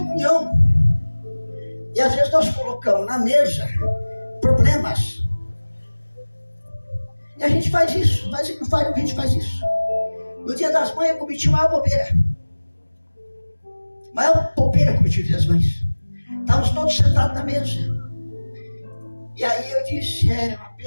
E às vezes nós colocamos na mesa problemas. E a gente faz isso. A gente faz isso. No dia das mães eu cometi maior bobeira. Maior bobeira cometi no dia das mães. Estávamos todos sentados na mesa. E aí eu disse, é uma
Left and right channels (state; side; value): inverted; both; correlation -1.00